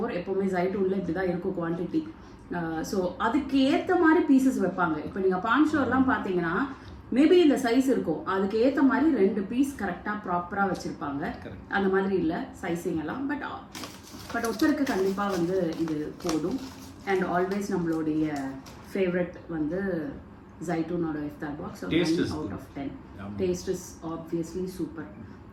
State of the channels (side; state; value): both; identical; correlation 1.00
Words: எப்பவுமே ஜைட்டூன்ல இப்படிதான் இருக்கும் குவாண்டிட்டி. ஸோ அதுக்கு ஏற்ற மாதிரி பீசஸ் வைப்பாங்க. இப்போ நீங்கள் பான் ஷோர்லாம் பார்த்தீங்கன்னா மேபி இந்த சைஸ் இருக்கும், அதுக்கு ஏற்ற மாதிரி 2 பீஸ் கரெக்டாக ப்ராப்பராக வச்சுருப்பாங்க. அந்த மாதிரி இல்லை சைஸிங் எல்லாம். பட் ஒருத்தருக்கு கண்டிப்பாக வந்து இது போதும். அண்ட் ஆல்வேஸ் நம்மளுடைய ஃபேவரட் வந்து ஜைட்டூனோட iftar box out of 10. Taste is obviously super.